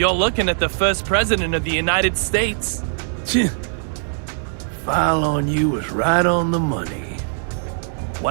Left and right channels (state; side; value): silent; left; digital silence